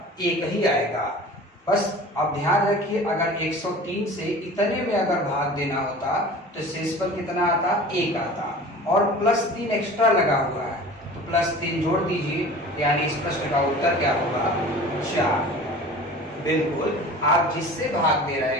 1 ही आएगा। बस अब ध्यान रखिए, अगर 103 से इतने में अगर भाग देना होता तो शेषफल कितना आता? 1 आता, और प्लस 3 एक्स्ट्रा लगा हुआ है तो प्लस 3 जोड़ दीजिए, यानी इस प्रश्न का उत्तर क्या होगा? 4। बिल्कुल, आप जिससे भाग दे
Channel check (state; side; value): normal; both; correlation 0.40